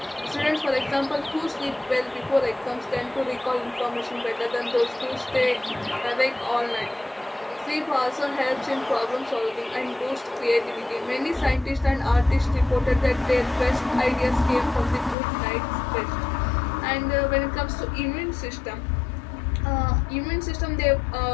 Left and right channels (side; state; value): right; drops out; at 15.2 s